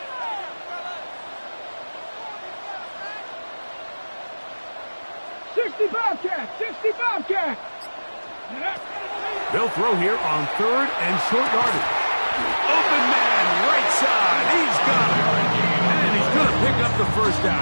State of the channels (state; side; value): inverted; both; correlation -1.00